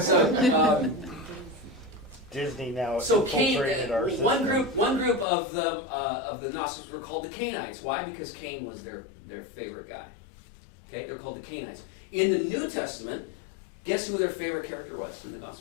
Disney now so Cain, infiltrated our system. one group of the Gnostics were called the Cainites. Why? Because Cain was their favorite guy. Okay, they're called the Cainites. In the New Testament, guess who their favorite character was in the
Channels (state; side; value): drops out; right; at 5.2 s